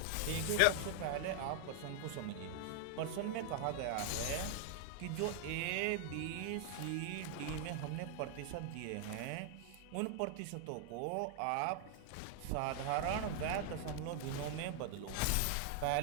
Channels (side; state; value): both; different; correlation 0.00